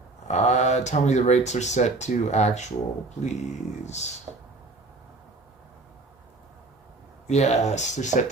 Tell me the rates are set to actual, please. Yes, they're set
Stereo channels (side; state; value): left; quieter; 3.3 dB